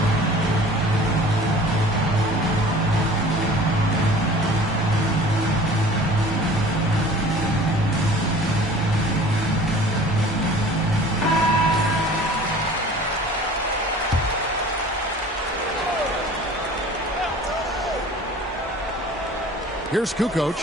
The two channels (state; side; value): normal; both; correlation 0.45